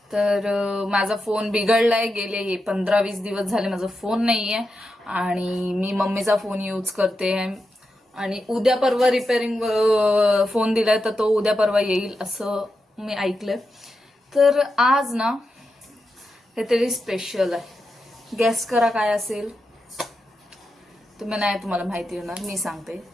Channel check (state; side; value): normal; both; correlation 0.88